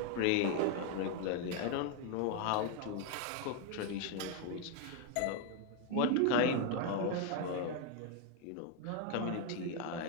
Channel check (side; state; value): both; different; correlation 0.01